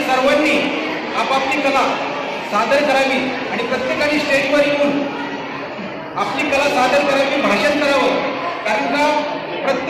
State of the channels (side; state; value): both; identical; correlation 1.00